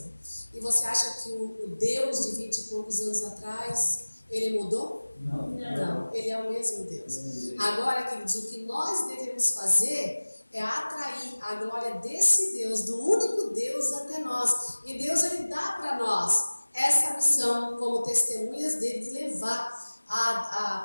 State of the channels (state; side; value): inverted; both; correlation -1.00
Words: E você acha que o Deus de 20 e poucos anos atrás, ele mudou? Não, ele é o mesmo Deus. Agora, queridos, o que nós devemos fazer é atrair a glória desse Deus, do único Deus, até nós. E Deus, ele dá para nós essa missão como testemunhas dele, de levar